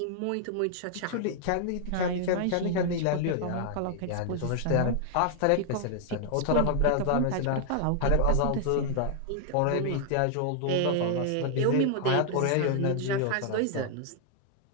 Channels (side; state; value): both; different; correlation 0.00